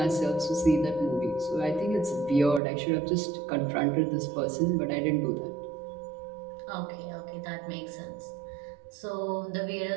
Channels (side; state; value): left; drops out; at 2.6 s